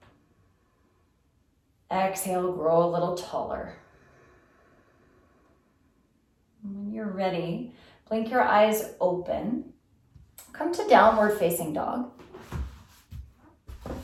Exhale, grow a little taller. When you're ready, blink your eyes open. Come to downward facing dog.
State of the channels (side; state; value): both; identical; correlation 1.00